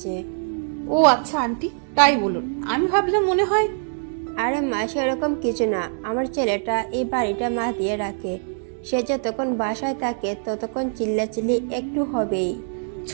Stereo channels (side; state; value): left; silent; digital silence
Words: ও আচ্ছা আন্টি, তাই বলুন, আমি ভাবলাম মনে হয়। আরে মা সেরকম কিছু না, আমার ছেলেটা এই বাড়িটা মা দিয়ে রাখে, সে যতক্ষণ বাসায় থাকে ততক্ষণ চিল্লাচিল্লি একটু হবেই।